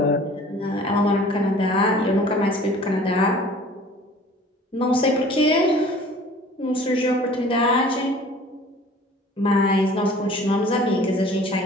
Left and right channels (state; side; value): normal; both; correlation 0.48